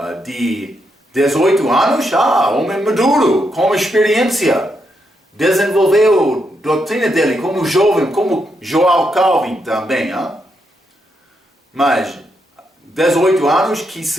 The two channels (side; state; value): both; normal; correlation 0.80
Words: de 18 anos, homem maduro, com experiência. Desenvolveu a doutrina dele como jovem, como Joel Calvin também. Mas 18 anos que